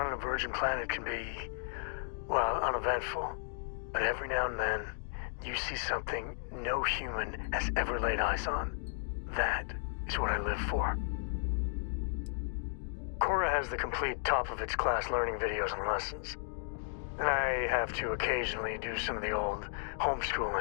on a virgin planet can be, well, uneventful. But every now and then, you see something no human has ever laid eyes on. That is what I live for. Cora has the complete top-of-its-class learning videos and lessons. And I have to occasionally do some of the old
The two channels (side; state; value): right; silent; digital silence